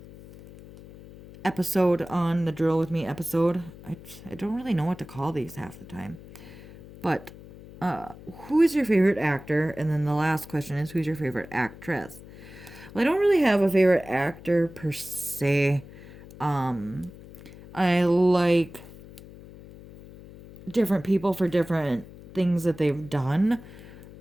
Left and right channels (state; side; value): noise; left; hum, 18 dB below the sound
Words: episode on the Drill With Me episode. I don't really know what to call these half the time. But Who is your favorite actor? And then the last question is, who's your favorite actress? Well, I don't really have a favorite actor per se. I like different people for different things that they've done